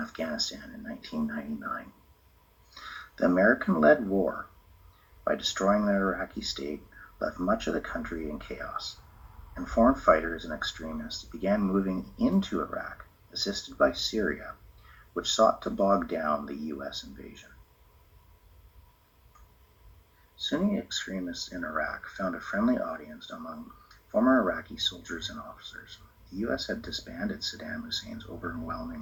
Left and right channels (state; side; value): identical; both; correlation 1.00